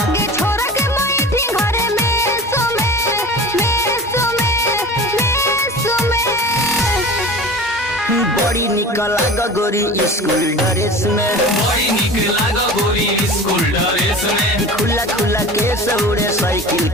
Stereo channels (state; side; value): normal; both; correlation 0.37